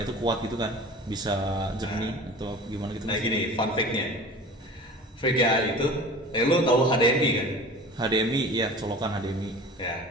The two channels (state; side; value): normal; both; correlation 0.39